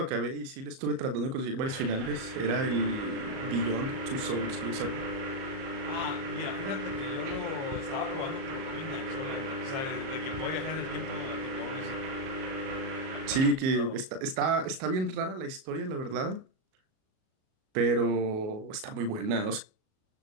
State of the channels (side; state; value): left; late; 37 ms